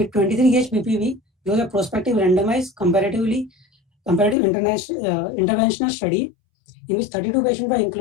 23 gauge PPV. It was a prospective randomized comparative interventional study in which 32 patients were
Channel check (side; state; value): right; drops out; at 4.4 s